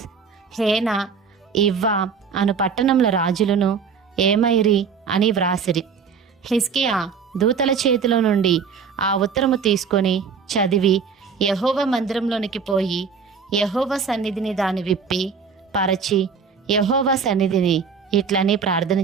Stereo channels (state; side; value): quieter; left; 6.0 dB